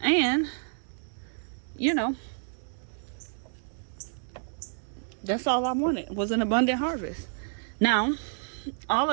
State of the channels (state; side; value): silent; left; digital silence